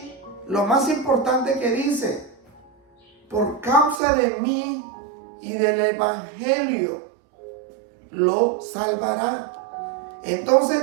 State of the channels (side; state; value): left; drops out; at 4.0 s